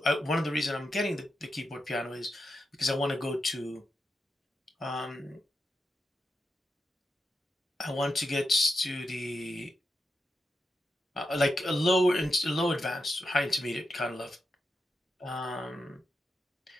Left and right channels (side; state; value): both; normal; correlation 0.87